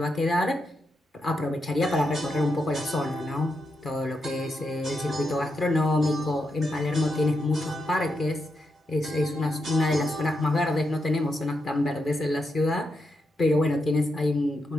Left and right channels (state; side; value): normal; both; correlation 0.84